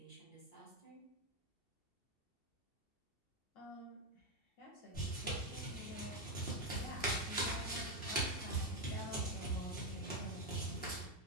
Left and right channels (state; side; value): late; right; 2.7 ms